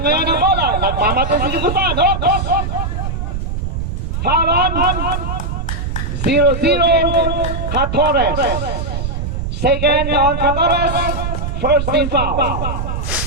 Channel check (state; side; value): noise; right; rumble, 3 dB below the sound